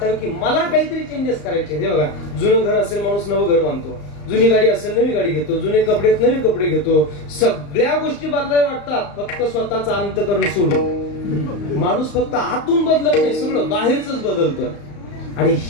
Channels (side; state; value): right; late; 35 ms